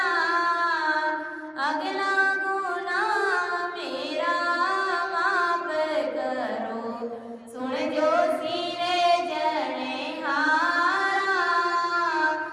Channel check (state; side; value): identical; both; correlation 1.00